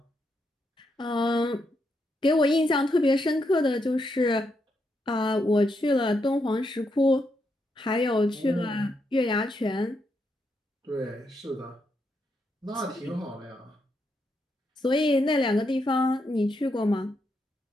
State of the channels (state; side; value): normal; both; correlation 0.81